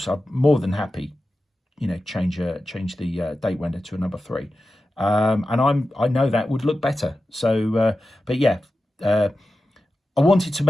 I'm more than happy, change the date window to a number 3, and I know that would look better. So, but yeah, I wanted to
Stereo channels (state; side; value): normal; both; correlation 0.92